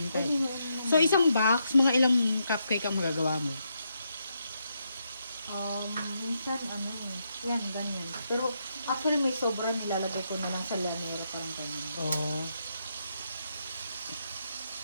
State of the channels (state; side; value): inverted; both; correlation -0.80